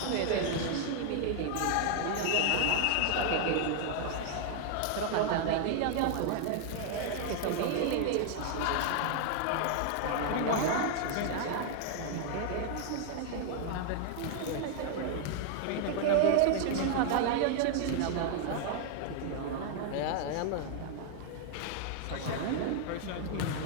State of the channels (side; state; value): both; different; correlation 0.00